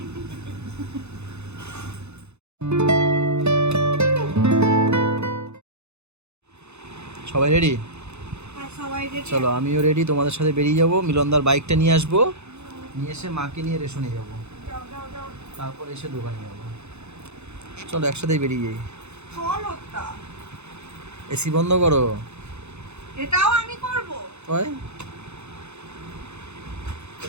সবাই রেডি? হ্যাঁ সবাই রেডি। চলো আমিও রেডি, তোমাদের সাথে বেরিয়ে যাবো। মিলনদার বাইকটা নিয়ে আসবো, নিয়ে এসে মাকে নিয়ে রেশনে যাবো, যাও যাও যাও। তারপর এসে দোকানে যাবো। চলো একসাথেই বেরিয়ে যাই। চলো তা। এসি বন্ধ করো। এটাও আমি করব। ওই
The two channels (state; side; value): late; left; 0.81 ms